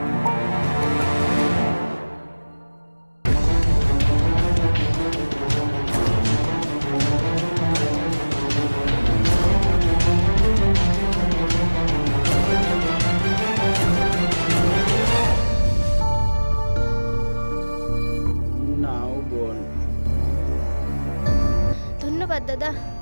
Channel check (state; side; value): inverted; both; correlation -1.00